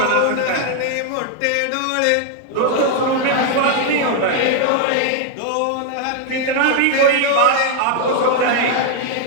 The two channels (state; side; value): different; both; correlation 0.00